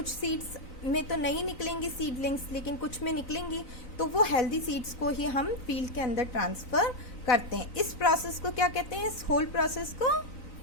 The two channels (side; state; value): right; late; 3.9 ms